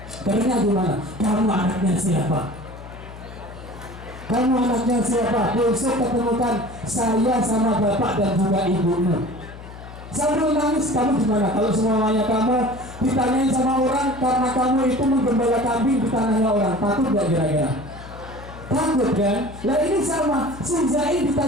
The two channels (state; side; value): noise; left; hum, 15 dB below the sound